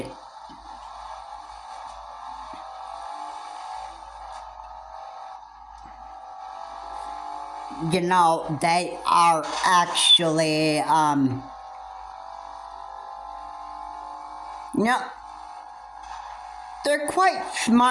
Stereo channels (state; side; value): identical; both; correlation 1.00